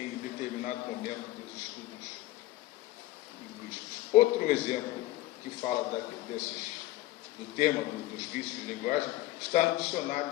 determinado momento dos estudos linguísticos. Outro exemplo que fala do tema dos vícios de linguagem está no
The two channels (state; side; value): quieter; right; 16.8 dB